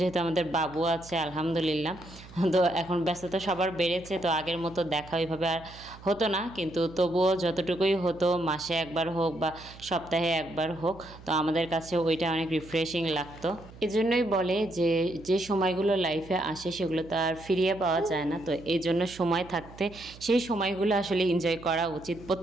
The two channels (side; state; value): right; noise; hum, 19 dB below the sound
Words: আমাদের বাবু আছে আলহামদুলিল্লাহ, তো এখন ব্যস্ততা সবার বেড়েছে। তো আগের মতো দেখা ওইভাবে আর হতো না, কিন্তু তবুও যতটুকুই হতো, মাসে একবার হোক বা সপ্তাহে একবার হোক, তো আমাদের কাছে ওইটা অনেক রিফ্রেশিং লাগতো। এজন্যই বলে যে যে সময়গুলো লাইফে আসে সেগুলো তো আর ফিরিয়ে পাওয়া যায় না। তো এই জন্য সময় থাকতে সেই সময়গুলো আসলে এনজয় করা উচিত,